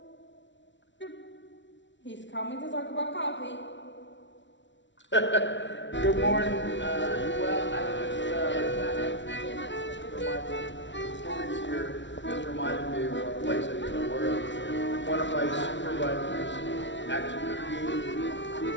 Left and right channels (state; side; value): late; right; 0.54 ms